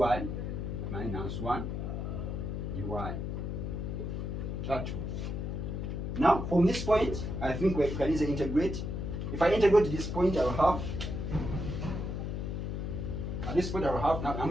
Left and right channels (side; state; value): left; noise; hum, 3 dB below the sound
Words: minus 1 dy. That one. Now, from this point, I think we can easily integrate. If I integrate this point, I will have, at this point I will have, now I'm